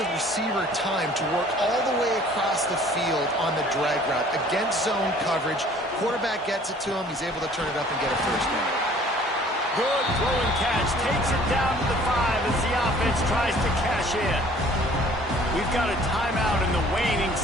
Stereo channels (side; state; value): both; normal; correlation 0.53